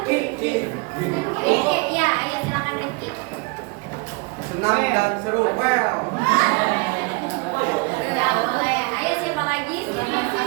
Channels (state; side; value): quieter; left; 28.3 dB